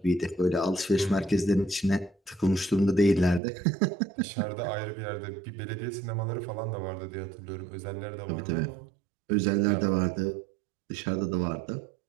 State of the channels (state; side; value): drops out; left; at 3.4 s